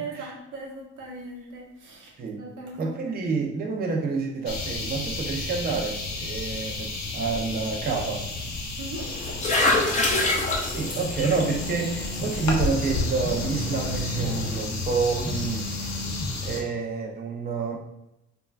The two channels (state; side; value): normal; both; correlation 0.32